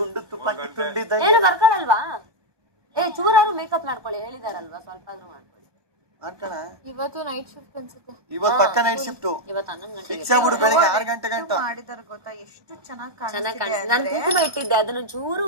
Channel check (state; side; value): late; left; 1.2 ms